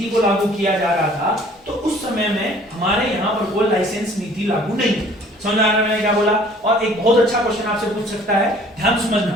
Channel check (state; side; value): normal; both; correlation 0.53